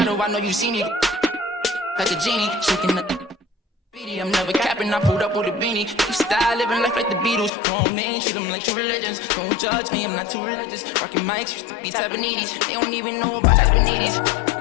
I know you seen it. Like a genie, shaking the beanie. I'm never capping, I pulled up with a beanie. Keep style, living life like the Beatles. Grown men, treat them like true religions. Don't judge me, I'm not too religious. Rockin' mics, used to be Tabanese. They don't even know about Tabanese.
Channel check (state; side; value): drops out; right; at 7.5 s